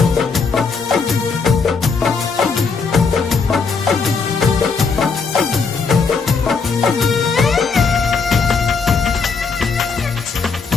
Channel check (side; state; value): right; quieter; 5.0 dB